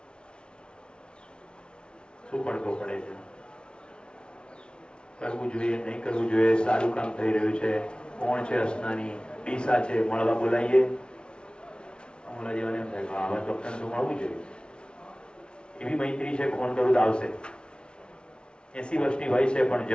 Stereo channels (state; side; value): late; right; 0.056 ms